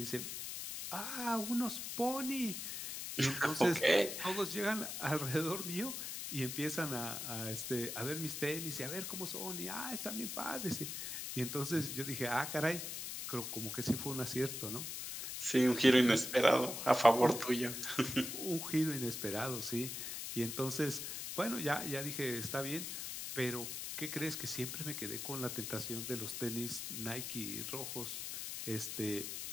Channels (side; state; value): left; noise; hiss, 5 dB below the sound